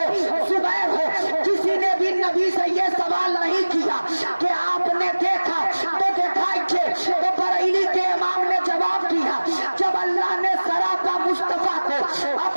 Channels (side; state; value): both; inverted; correlation -1.00